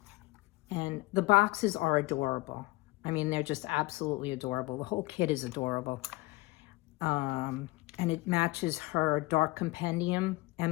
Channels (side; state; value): right; quieter; 21.5 dB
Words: And the boxes are adorable. I mean, they're just absolutely adorable. The whole kit is adorable. And it matches her Dark Compendium